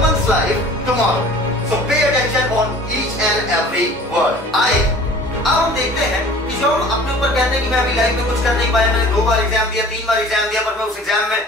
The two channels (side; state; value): both; normal; correlation 0.46